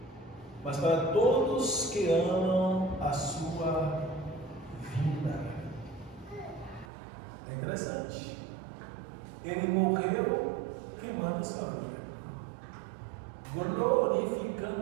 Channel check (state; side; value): drops out; left; at 6.9 s